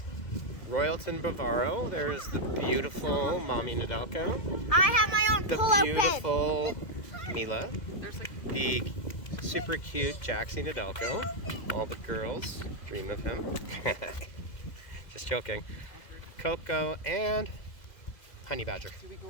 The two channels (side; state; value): right; late; 2.0 ms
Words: Royalton Bavaro. There's the beautiful Mommy Nedelko. I have my own The pull-out beautiful Mila. The super cute Jaxie Nedelko. All the girls dream of him. Just joking. Coco and Honey Badger.